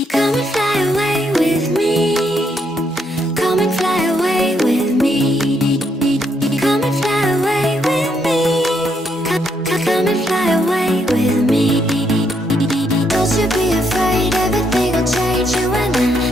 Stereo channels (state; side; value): normal; both; correlation 0.75